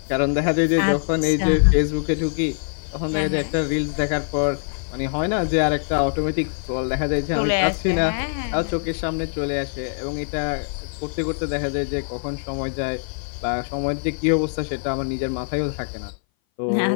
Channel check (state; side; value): silent; right; 58 dB below the other